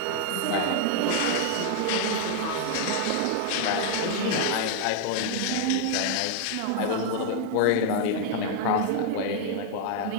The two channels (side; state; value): both; different; correlation 0.00